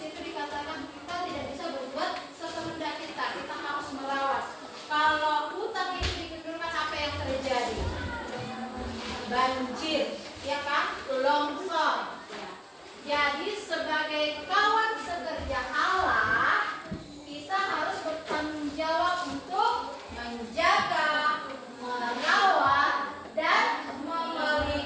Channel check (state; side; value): identical; both; correlation 1.00